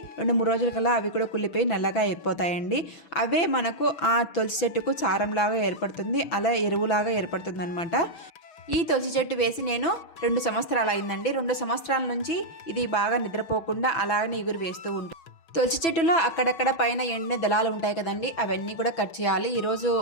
2-3 రోజుల కల్లా అవి కూడా కుళ్ళిపోయి నల్లగా అయిపోతాయండి. అవే మనకు ఆ తులసి చెట్టుకు చారంలాగా ఏర్పడుతుంది, అలా ఎరువులాగా ఏర్పడుతుంది అనమాట. ఈ తులసి చెట్టు వేసి నేను 2 సంవత్సరాలు అయిందండి. 2 సంవత్సరాల నుంచి ఇది బాగా నిద్రపోకుండా అలాగనే ఇగురు వేస్తూ ఉంటుంది. తులసి చెట్టులో అక్కడక్కడ పైన ఎండిన దళాలు ఉంటాయి కదండి, అవన్నీ కూడా కట్ చేయాలి. ఈరోజు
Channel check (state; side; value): late; right; 6.0 ms